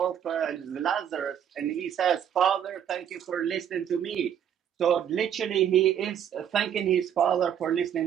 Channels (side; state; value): left; quieter; 9.2 dB